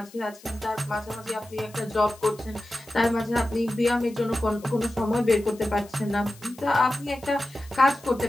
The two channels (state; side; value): noise; left; hiss, 23 dB below the sound